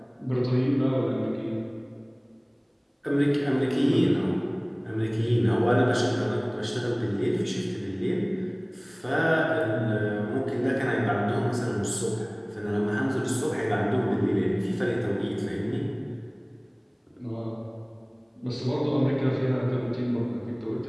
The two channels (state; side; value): identical; both; correlation 1.00